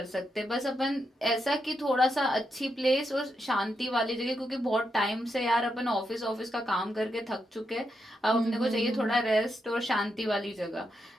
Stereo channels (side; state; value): both; normal; correlation 0.83